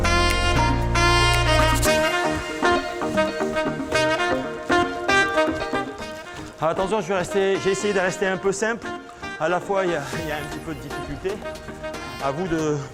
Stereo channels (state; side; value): identical; both; correlation 1.00